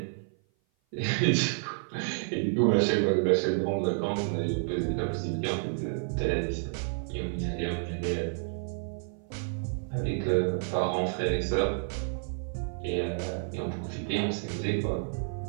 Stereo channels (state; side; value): silent; left; 55 dB below the other